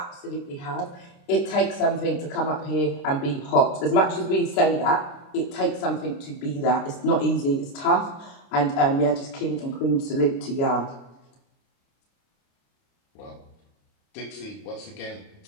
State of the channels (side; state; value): right; late; 29 ms